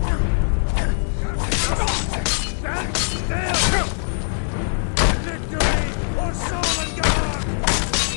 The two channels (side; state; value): right; silent; digital silence